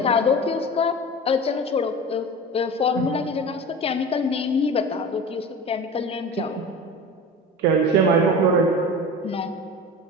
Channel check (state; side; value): normal; both; correlation 0.32